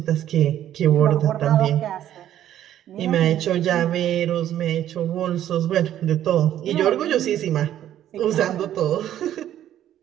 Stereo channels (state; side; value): quieter; left; 11.6 dB